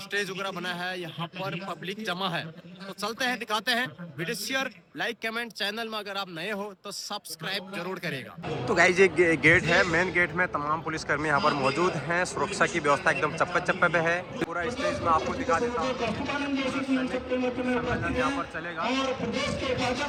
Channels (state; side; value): identical; both; correlation 1.00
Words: स्टेज वगैरह बना है, यहाँ पर पब्लिक जमा है। तो चलते हैं, दिखाते हैं। Video share, like, comment. Channel में अगर आप नए हो तो सब्सक्राइब जरूर करेगा। तो गाइस ये गेट है, मेन गेट में तमाम पुलिसकर्मी यहाँ पर मौजूद हैं। सुरक्षा की व्यवस्था एकदम चप्पे चप्पे पे है। पूरा स्टेज में आपको दिखा देता हूँ। सम्मेलन यहाँ पर चलेगा।